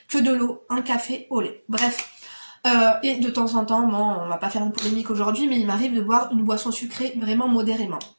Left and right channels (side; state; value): both; inverted; correlation -1.00